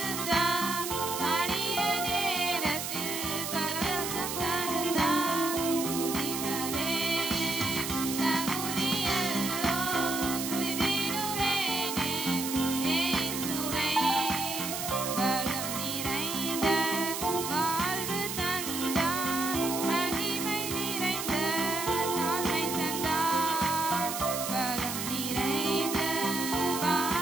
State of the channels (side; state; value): right; noise; hiss, 4 dB below the sound